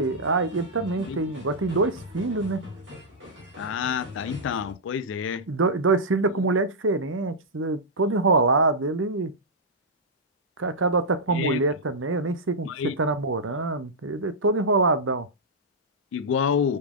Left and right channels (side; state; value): both; normal; correlation -0.09